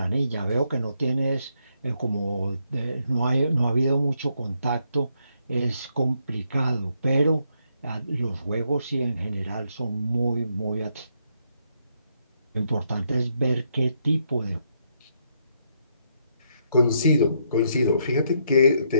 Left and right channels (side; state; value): both; inverted; correlation -0.76